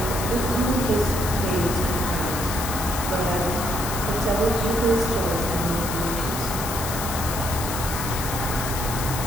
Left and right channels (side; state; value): left; noise; hiss, 6 dB below the sound